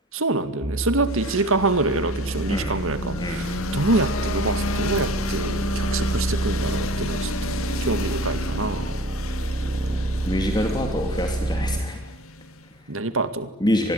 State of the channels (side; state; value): both; normal; correlation 0.42